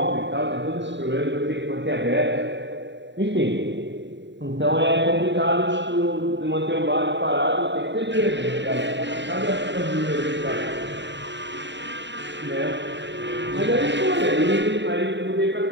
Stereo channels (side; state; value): left; late; 0.52 ms